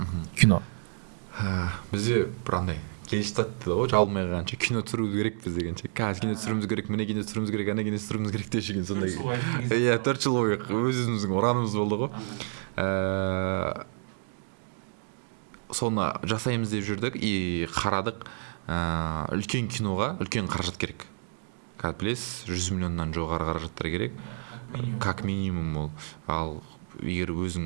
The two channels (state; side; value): silent; left; 58 dB below the other